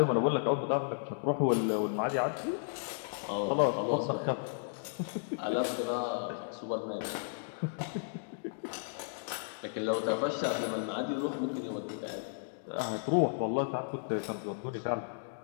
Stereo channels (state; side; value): silent; right; digital silence